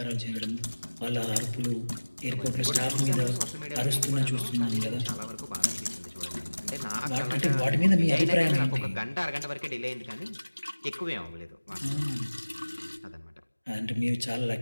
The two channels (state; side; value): inverted; both; correlation -1.00